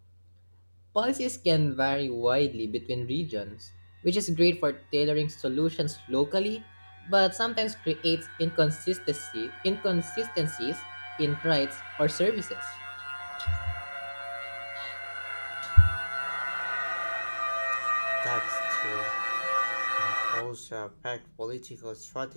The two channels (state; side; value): inverted; both; correlation -1.00